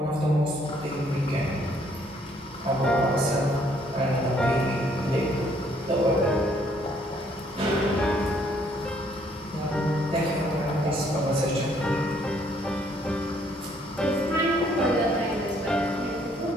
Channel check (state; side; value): normal; both; correlation 0.66